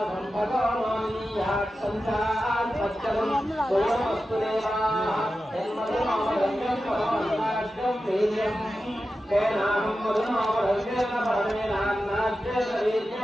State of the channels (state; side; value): normal; both; correlation 0.92